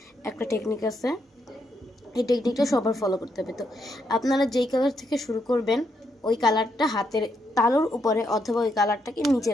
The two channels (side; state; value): both; normal; correlation 0.78